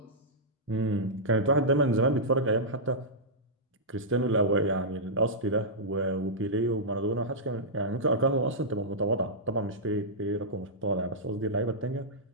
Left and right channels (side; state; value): both; normal; correlation -0.12